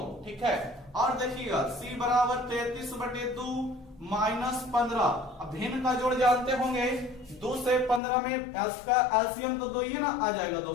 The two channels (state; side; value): drops out; right; at 8.0 s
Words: ठीक है। और देखिएगा सी बराबर 33/2 माइनस 15। अब भिन्न का जोड़ जानते होंगे, 2 से 15 में इसका एलसीएम तो 2 ही ना आ जाएगा